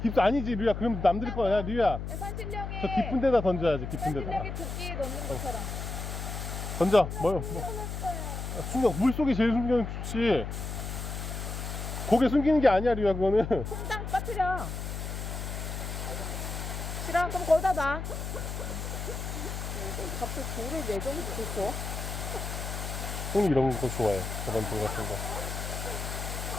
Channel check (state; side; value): noise; left; hum, 5 dB below the sound